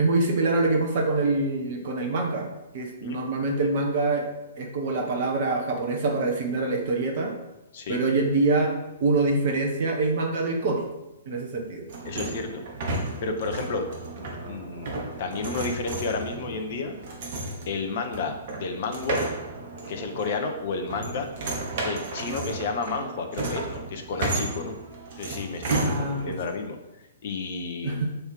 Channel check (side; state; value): both; inverted; correlation -0.44